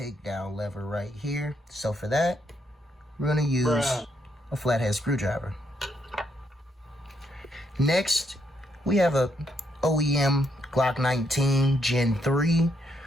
lever right here. So for that, we're going to use a flathead screwdriver. Next, we have a OEM Glock 19 Gen 3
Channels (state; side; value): normal; both; correlation 0.76